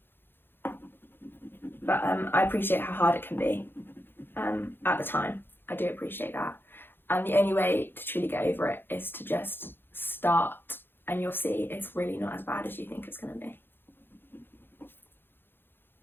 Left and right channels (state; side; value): late; right; 0.10 ms